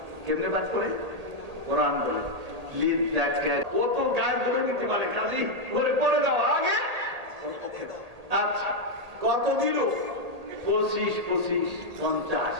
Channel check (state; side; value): late; left; 1.8 ms